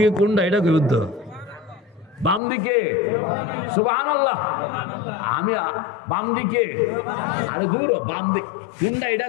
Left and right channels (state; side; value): drops out; right; at 2.4 s